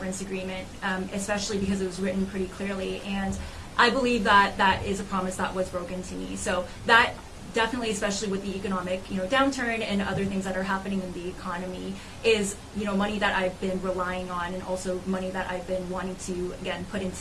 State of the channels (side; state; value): both; identical; correlation 1.00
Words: agreement, especially because it was written pretty clearly, and I believe that that is a promise that was broken to me. So that definitely, especially with the economic, downturn and other things that are happening in the economy, is, money that I've been relying on, and also money that I've been wanting to, again, put